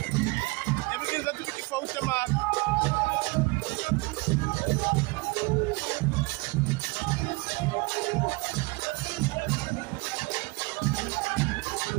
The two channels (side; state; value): left; quieter; 25.5 dB